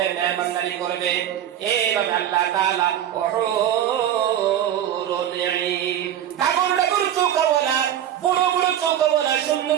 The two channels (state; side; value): quieter; left; 10.9 dB